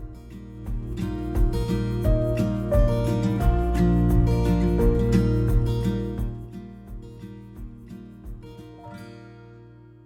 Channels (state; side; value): identical; both; correlation 1.00